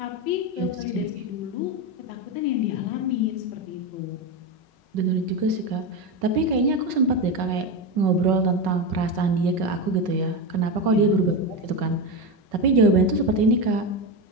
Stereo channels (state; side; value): late; left; 5.4 ms